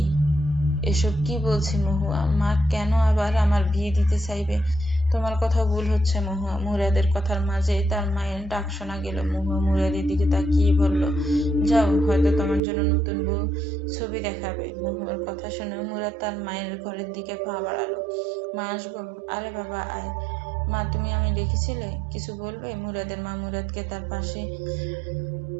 এসব কি বলছি মহুয়া? মা কেন আবার আমার বিয়ে দিতে চাইবে? তোমার কথা ভুল হচ্ছে মহুয়া। মুরাদের কথার মাঝে তার মায়ের ডাক শোনা গেল। মহুয়া মুরাদের দিকে তাকিয়ে বলল, যাও, হয়তো তোমার জন্য নতুন বউ ছবি দেখাবে। মহুয়ার কথা শুনে মুরাদ তার মায়ের ঘরের দিকে পা বাড়ালো। মা, আসবো? আরে বাবা, আয়। মা, তুমি আমি ডেকেছিলে, কিছু বলবে? মুরাদের মা মুরাদকে তার পাশে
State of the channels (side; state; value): left; drops out; at 12.6 s